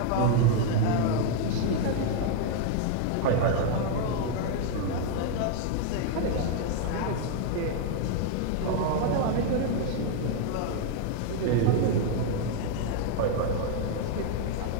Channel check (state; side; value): different; both; correlation 0.00